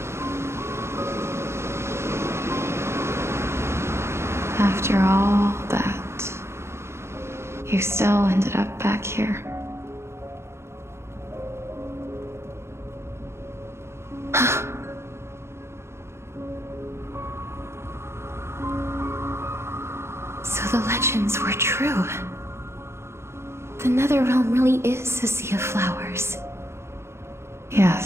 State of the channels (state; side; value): late; left; 0.13 ms